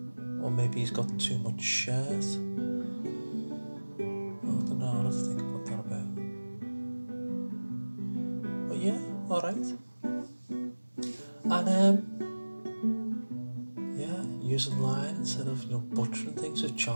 or maybe he's got too much shirt. I don't know, I'll have to think about that a bit. But yeah, alright. And using line instead of butchering things with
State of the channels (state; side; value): inverted; both; correlation -1.00